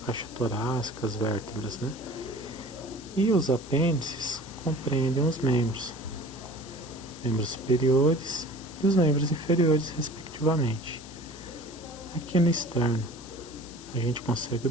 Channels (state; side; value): noise; left; hiss, 17 dB below the sound